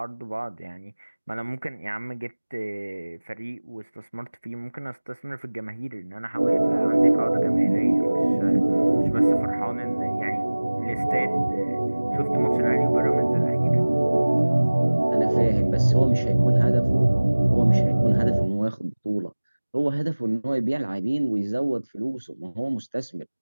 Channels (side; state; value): both; inverted; correlation -1.00